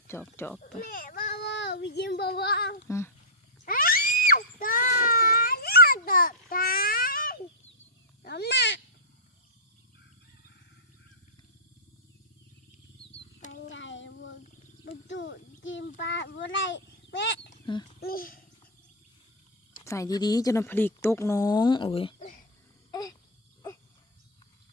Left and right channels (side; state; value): both; normal; correlation -0.09